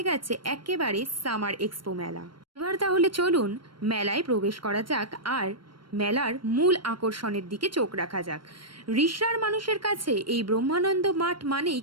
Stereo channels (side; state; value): left; late; 0.72 ms